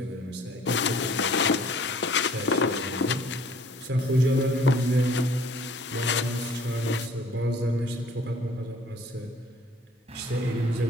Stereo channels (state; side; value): normal; both; correlation 0.55